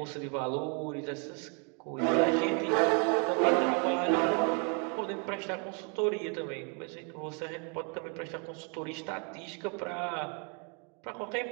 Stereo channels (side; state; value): left; quieter; 37.3 dB